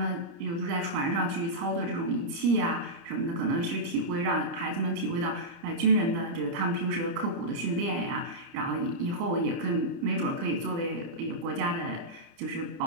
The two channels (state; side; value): late; left; 30 ms